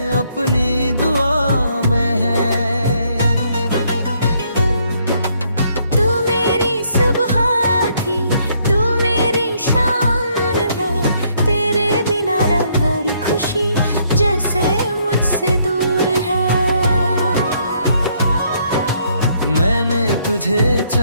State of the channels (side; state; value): both; inverted; correlation -0.69